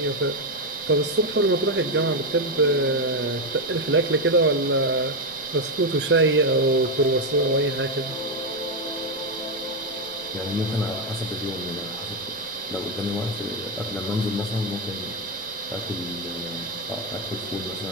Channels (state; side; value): noise; left; rumble, 28 dB below the sound